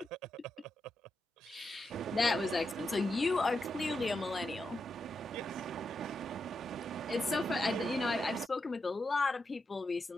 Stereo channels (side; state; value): both; normal; correlation 0.86